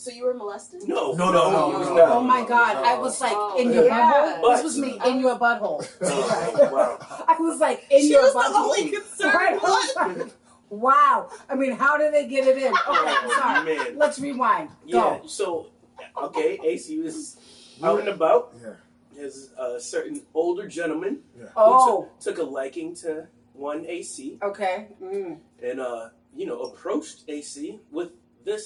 you were molested? No. No. Oh my God! I was like in your yeah. butthole. This was me in your butthole. Wow. I was like in She your was butthole. the only concern. Right? I was like, wow. I mean, how did they get it in? Okay, Oh, sorry. man. Let's rewind. Yeah. Go. So, okay, AC was out and about. Yeah. There's a certain older gentleman Oh. who took a liking to one AC Okay. Mm. and approached AC with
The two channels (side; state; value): both; identical; correlation 1.00